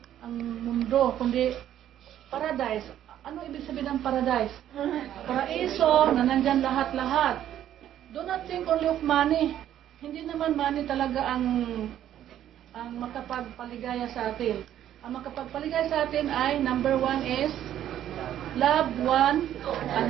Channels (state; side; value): quieter; left; 11.3 dB